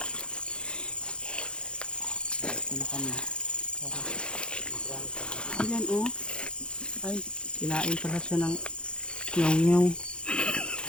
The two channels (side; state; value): right; late; 0.054 ms